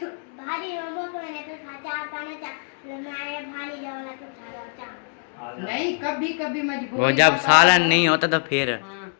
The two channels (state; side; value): silent; right; 57 dB below the other